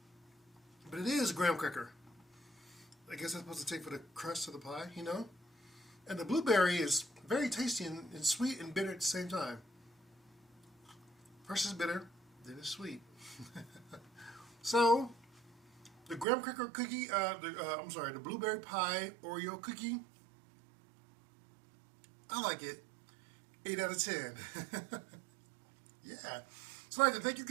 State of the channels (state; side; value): drops out; left; at 16.2 s